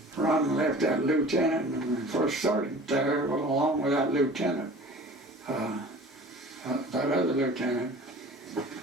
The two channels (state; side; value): normal; both; correlation 0.43